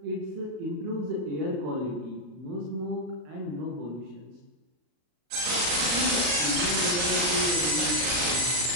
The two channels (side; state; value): left; late; 37 ms